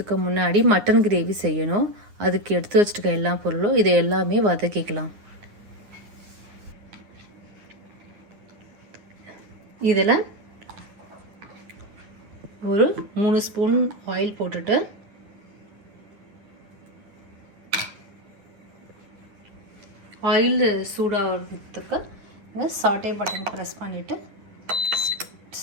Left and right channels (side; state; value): left; late; 9.7 ms